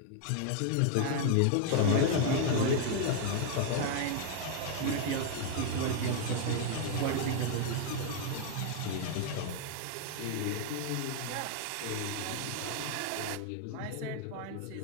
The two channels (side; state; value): both; different; correlation 0.00